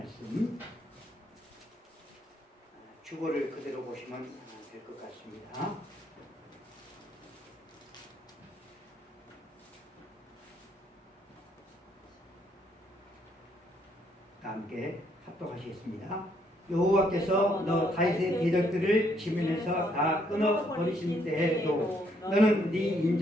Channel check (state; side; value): normal; both; correlation 0.71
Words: 주보를 그대로 보시면 될 것 같습니다. 함께 합독하시겠습니다. 여호와께서 너 다윗의 대적들을 지면에서 다 끊어버리신 때에도 너는 네